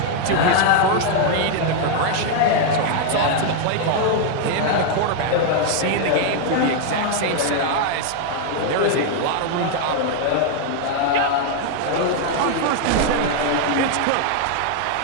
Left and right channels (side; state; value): both; different; correlation 0.00